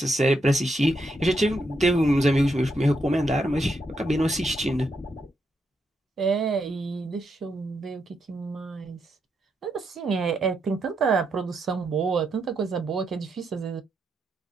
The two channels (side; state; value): both; normal; correlation 0.81